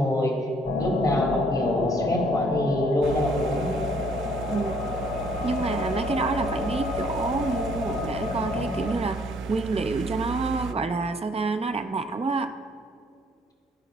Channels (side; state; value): both; normal; correlation 0.63